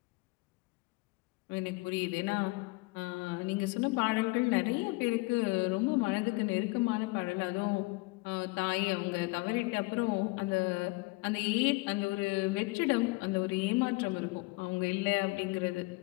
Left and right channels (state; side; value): quieter; right; 25.3 dB